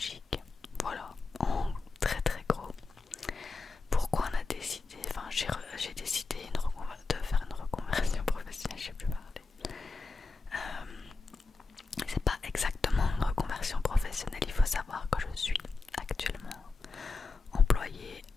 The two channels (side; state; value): right; quieter; 3.9 dB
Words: Voilà, en très très gros. Pourquoi on a décidé, enfin j'ai décidé de faire une reconversion professionnelle, je sais plus parler. C'est pas exactement une reconversion professionnelle, il faut savoir que je suis actuellement employée